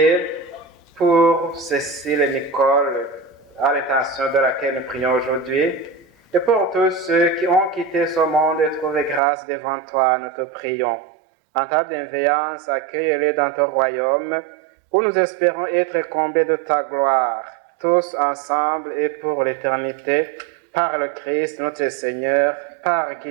pour Cécile et Nicole, à l'intention de laquelle nous prions aujourd'hui, et pour tous ceux qui ont quitté ce monde et trouvé grâce devant toi, nous te prions. En ta bienveillance, accueille-les dans ton royaume, où nous espérons être comblés de ta gloire, tous ensemble et pour l'éternité, par le Christ notre Seigneur, par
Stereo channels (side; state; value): left; drops out; at 9.2 s